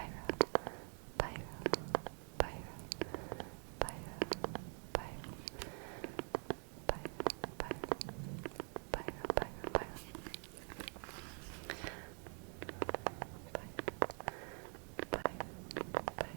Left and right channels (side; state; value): left; quieter; 39.0 dB